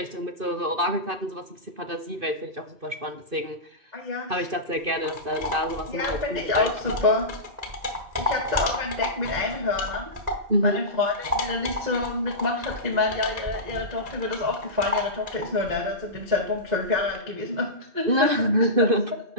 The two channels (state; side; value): late; left; 2.5 ms